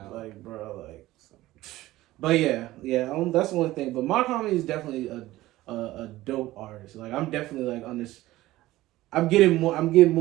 Like, bro, like. But yeah. That's one thing. But Mark Homie is definitely a dope artist. Like, I'm definitely like on this. I'm getting more and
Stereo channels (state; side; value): quieter; left; 16.8 dB